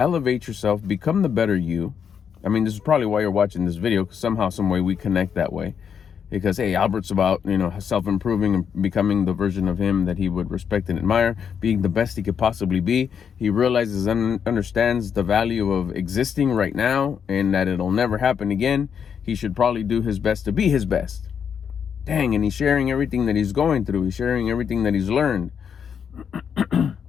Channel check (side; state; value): right; quieter; 7.4 dB